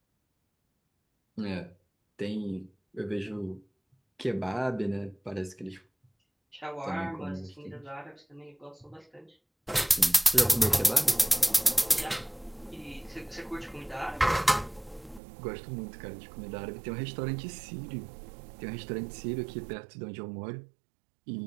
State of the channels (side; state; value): left; drops out; at 15.2 s